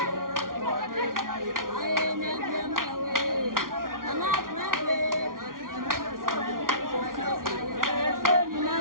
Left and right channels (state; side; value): late; left; 0.91 ms